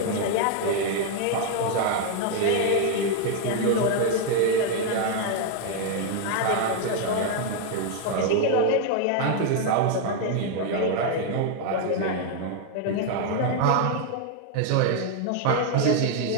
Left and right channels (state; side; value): different; both; correlation 0.00